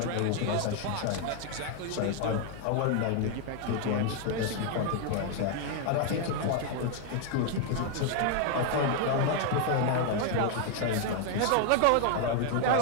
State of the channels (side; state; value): both; different; correlation 0.00